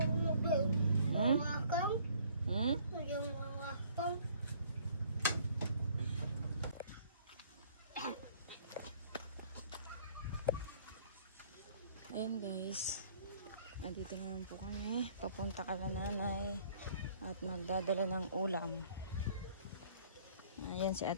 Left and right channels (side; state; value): both; inverted; correlation -0.57